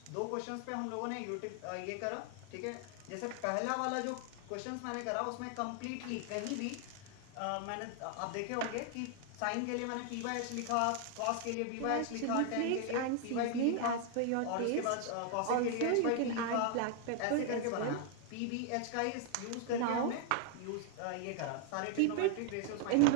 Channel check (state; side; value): different; both; correlation 0.00